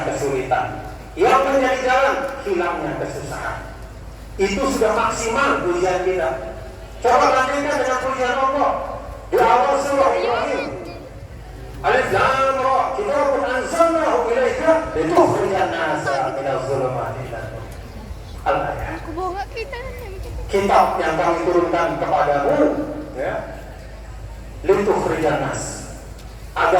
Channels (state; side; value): identical; both; correlation 1.00